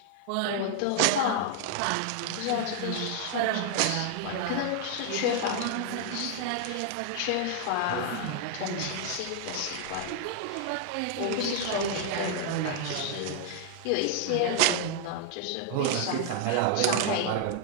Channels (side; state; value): both; different; correlation 0.00